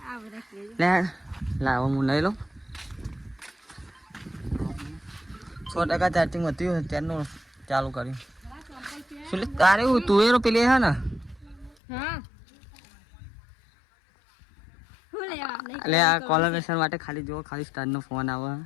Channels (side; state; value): right; drops out; at 11.8 s